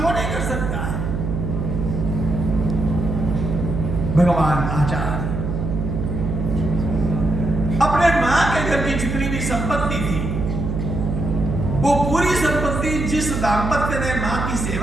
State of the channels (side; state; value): right; noise; hum, 3 dB below the sound